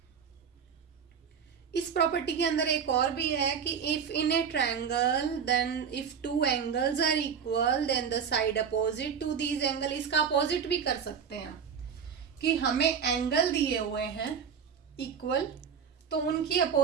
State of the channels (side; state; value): left; quieter; 7.0 dB